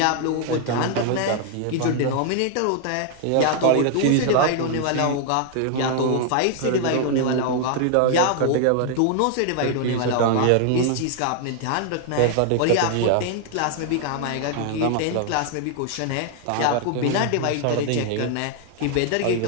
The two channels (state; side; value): different; both; correlation 0.00